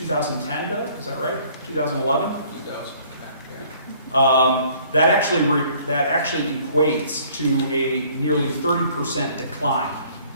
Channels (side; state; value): both; inverted; correlation -0.57